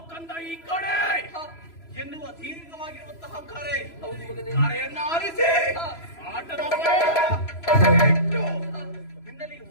ಕಂದ ಈ ಕಡೆ ಎನ್ನುವ ದೀರ್ಘವಾಗಿರುವಂತಹ ಕರೆಯನ್ನ ಆಲಿಸಿ ಆಟದ ನಿನ್ನಲ್ಲಿ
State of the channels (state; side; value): late; right; 3.0 ms